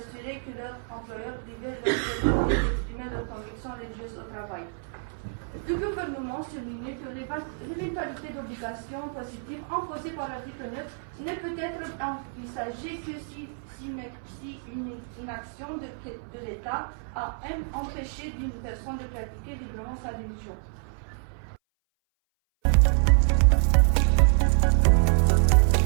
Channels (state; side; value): silent; left; 58 dB below the other